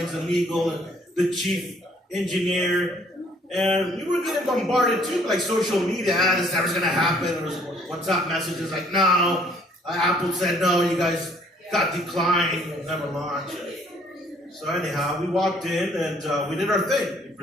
and legal, and the chief engineer. And we were getting bombarded too, like social media. This never's gonna happen. There was WhatsApp messages like, no, Apple said no, you guys got declined, you'll never launch. So anyhow, we walked in and we did our thing. We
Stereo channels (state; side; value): normal; both; correlation 0.61